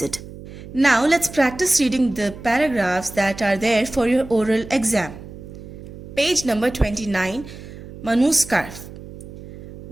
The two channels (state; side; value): noise; right; hum, 14 dB below the sound